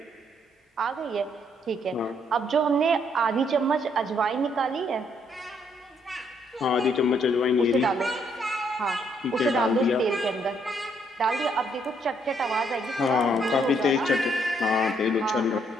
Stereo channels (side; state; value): both; normal; correlation 0.70